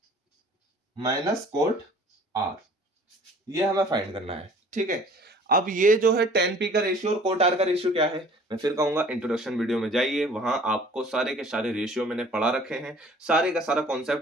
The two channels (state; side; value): normal; both; correlation 0.51